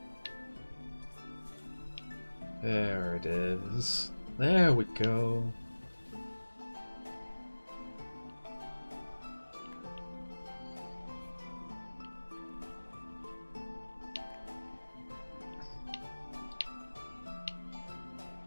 There it is. There we go.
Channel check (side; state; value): both; inverted; correlation -1.00